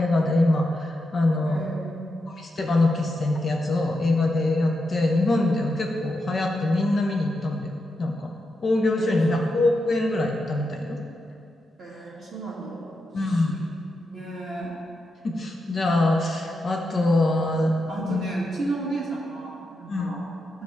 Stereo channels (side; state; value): both; normal; correlation 0.86